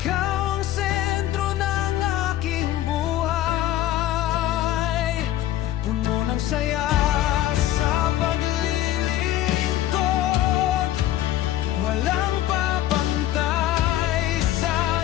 ang sentro ng aking buhay. Puno ng saya sa paglilingkod, walang papantay sa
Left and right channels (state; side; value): quieter; right; 13.4 dB